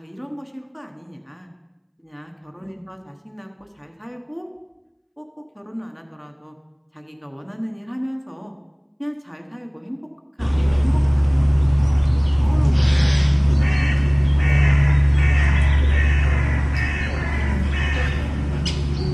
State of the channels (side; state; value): both; identical; correlation 1.00